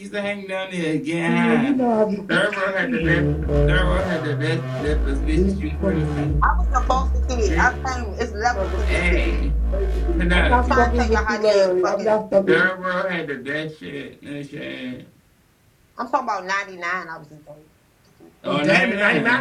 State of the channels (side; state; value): both; identical; correlation 1.00